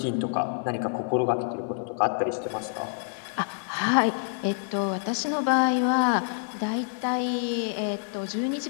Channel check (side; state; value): right; silent; digital silence